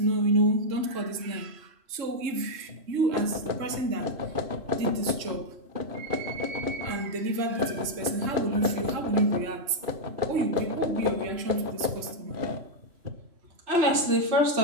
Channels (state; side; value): late; left; 3.0 ms